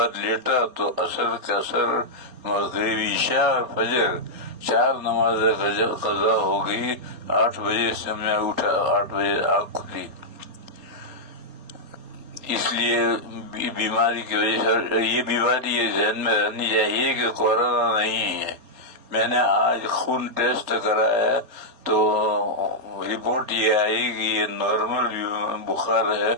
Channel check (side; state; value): left; late; 3.8 ms